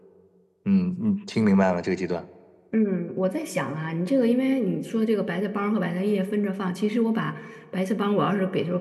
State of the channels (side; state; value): both; identical; correlation 1.00